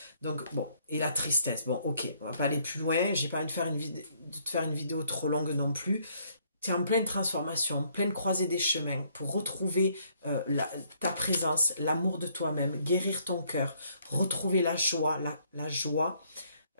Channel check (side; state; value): both; inverted; correlation -0.67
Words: Donc, bon, et la tristesse. Bon, ok, on va pas aller plus loin, j'ai pas envie de te faire une vidéo trop longue non plus. Tu es en pleine transformation, pleine croisée des chemins pour retrouver ta présence, l'amour de toi-même, guérir ton cœur, retrouver la joie, la joie,